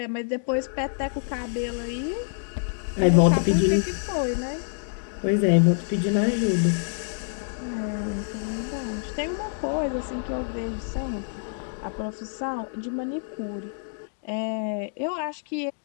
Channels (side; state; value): right; silent; digital silence